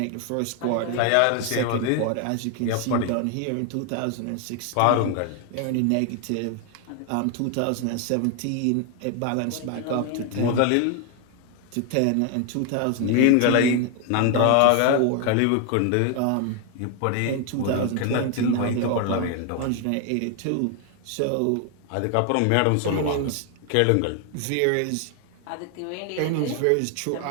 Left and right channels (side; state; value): both; different; correlation 0.01